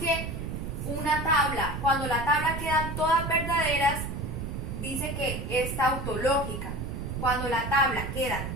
una tabla, cuando la tabla quedan todas verdaderas, dice que es tautológica. Cuando la tabla queda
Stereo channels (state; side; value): noise; right; rumble, 5 dB below the sound